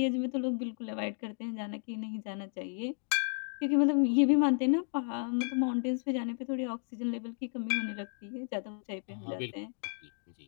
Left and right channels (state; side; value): silent; right; 56 dB below the other